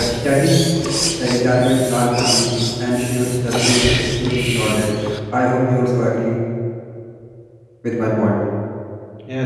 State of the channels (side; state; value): both; identical; correlation 1.00